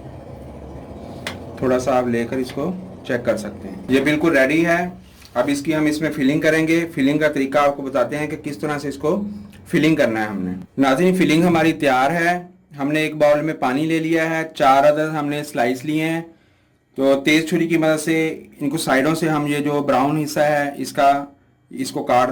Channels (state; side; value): identical; both; correlation 1.00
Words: थोड़ा सा आप लेकर इसको चेक कर सकते हैं। ये बिल्कुल रेडी है। अब इसकी हम इसमें फिलिंग करेंगे। फिलिंग का तरीका आपको बताते हैं कि किस तरह से इसको फिलिंग करना है हमने। नाज़रीन, फिलिंग हमारी तैयार है। हमने एक बाउल में पानी ले लिया है, 4 अदद हमने स्लाइस लिए हैं। तो तेज़ छुरी की मदद से इनको साइडों से हम ये जो ब्राउन हिस्सा है इसको काट